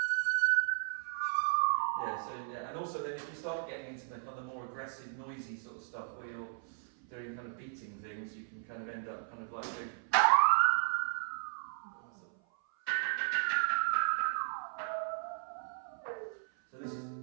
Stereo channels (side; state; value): left; silent; 54 dB below the other